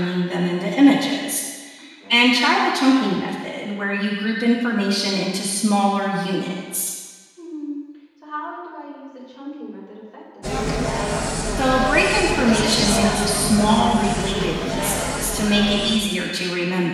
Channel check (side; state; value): both; identical; correlation 1.00